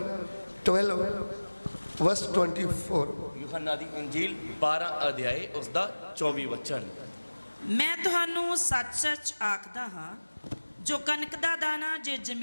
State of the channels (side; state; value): both; inverted; correlation -1.00